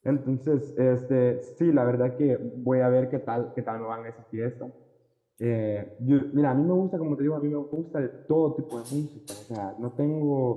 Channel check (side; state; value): both; identical; correlation 1.00